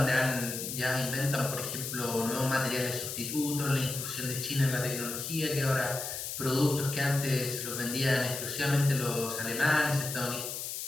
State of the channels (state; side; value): noise; left; hiss, 5 dB below the sound